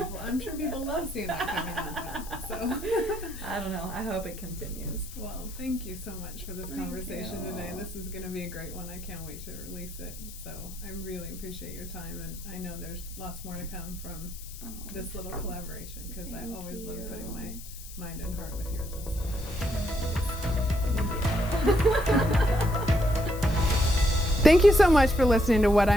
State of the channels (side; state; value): left; noise; hiss, 15 dB below the sound